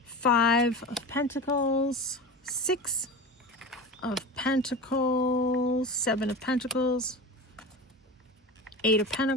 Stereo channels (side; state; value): both; normal; correlation 0.29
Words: Five of Pentacles. Six of Pentacles. Seven of Pentacles. Eight of